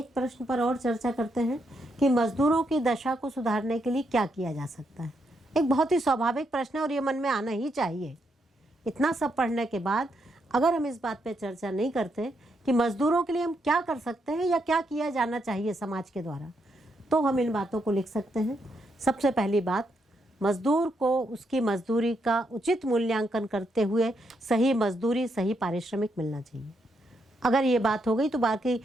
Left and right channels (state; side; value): normal; both; correlation 0.79